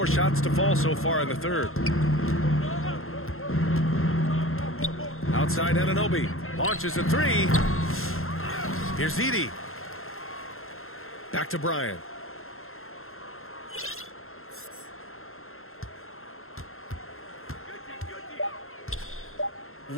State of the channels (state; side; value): late; right; 0.61 ms